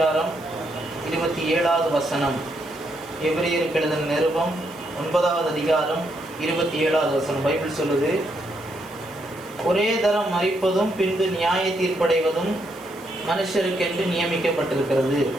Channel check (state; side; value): noise; right; hiss, 23 dB below the sound